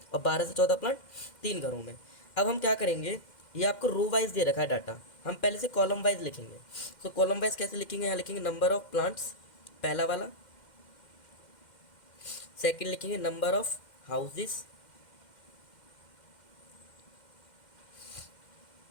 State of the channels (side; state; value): right; late; 2.1 ms